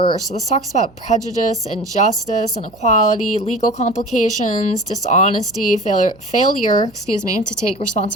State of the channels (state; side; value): noise; right; hum, 27 dB below the sound